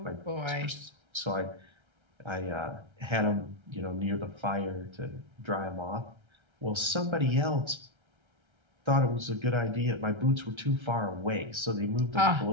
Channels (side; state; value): left; late; 1.3 ms